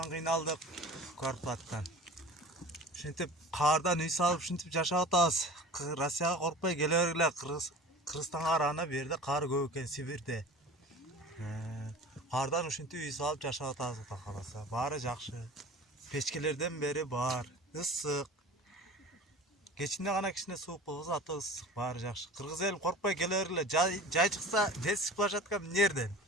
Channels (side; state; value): both; normal; correlation 0.39